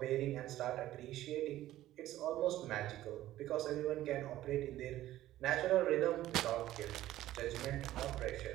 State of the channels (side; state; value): left; quieter; 14.4 dB